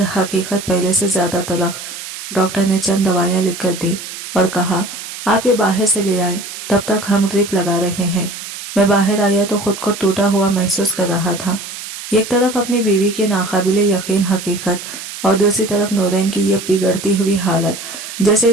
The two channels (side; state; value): right; noise; hiss, 10 dB below the sound